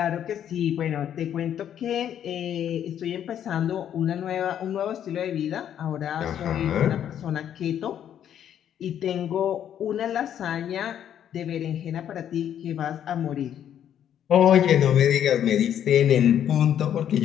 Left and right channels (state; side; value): quieter; right; 9.9 dB